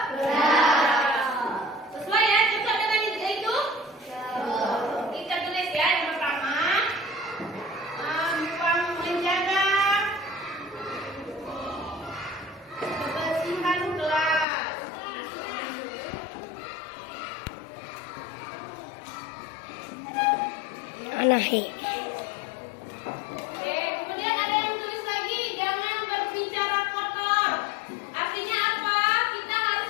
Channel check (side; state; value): right; drops out; at 14.5 s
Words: sesuai ya, cocok dengan itu. Kita tulis ya, yang pertama menjaga kebersihan kelas. Anahe. Oke, kemudian ada yang tulis lagi, jangan berbicara kotor. Artinya apa? Kita harus